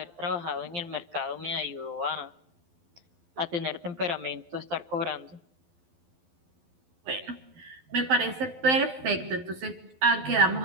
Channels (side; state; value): left; late; 12 ms